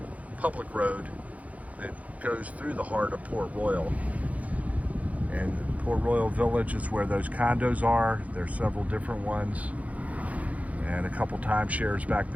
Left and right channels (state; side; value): late; left; 0.069 ms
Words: public road, that goes through the heart of Port Royal. And Port Royal Village is where those condos are. There's several different ones. And a couple timeshares back